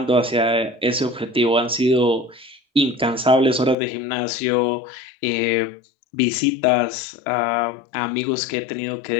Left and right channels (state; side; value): drops out; right; at 3.8 s